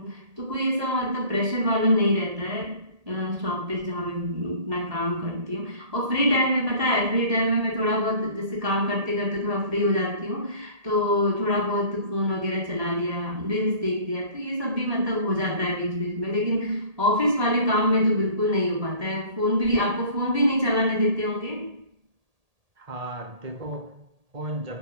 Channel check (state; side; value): late; left; 1.8 ms